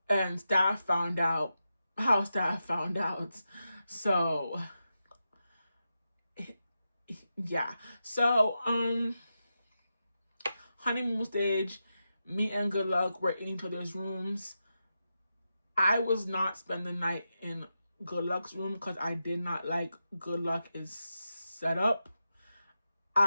And staff found out how staff found out. So, yeah. So, honeymoon stage, me and Good Luck were in each other's rooms. I was not spending the night in Good Luck's room because I did not like Good Luck is set up.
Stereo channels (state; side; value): inverted; both; correlation -0.89